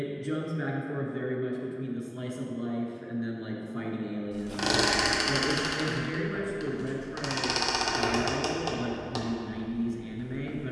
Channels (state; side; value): identical; both; correlation 1.00